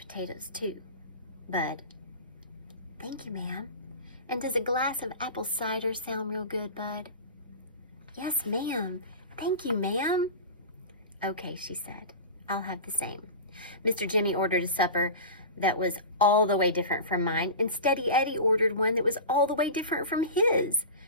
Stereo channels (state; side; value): inverted; both; correlation -0.31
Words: too? Bud, thank you, ma'am. And does a glass of apple cider sound real good, Bud? Yes, ma'am. Thank you, ma'am. Okay, she said. I'll have the same. Mr. Jimmy ordered a supper that was all the way different from mine, and Steady Eddie ordered one that was all the way different from his.